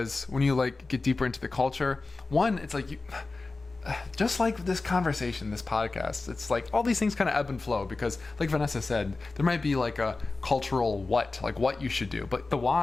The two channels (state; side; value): quieter; right; 3.6 dB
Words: when you like get deeper into the culture, one, it's like you just like this conversation, this podcast, it's like all these things kind of ebb and flow because like Vanessa said, there might be like a cultural what you should do, but the